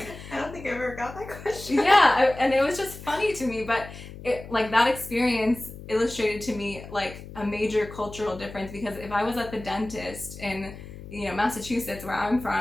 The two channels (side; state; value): left; noise; hum, 14 dB below the sound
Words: I don't think I ever got that question. And it was just funny to me, but it, like that experience illustrated to me like a major cultural difference, because if I was at the dentist in, you know, Massachusetts, where I'm